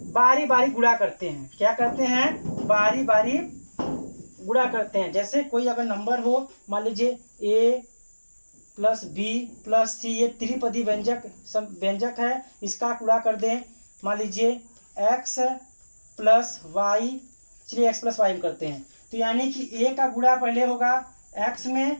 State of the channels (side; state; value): both; inverted; correlation -1.00